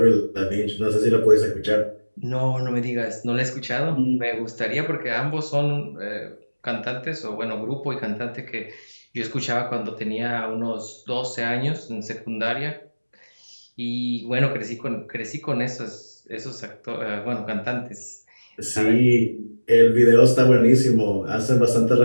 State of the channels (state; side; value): inverted; both; correlation -1.00